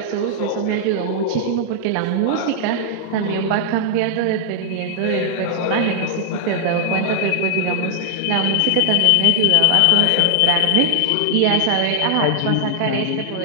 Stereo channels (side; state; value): both; different; correlation -0.01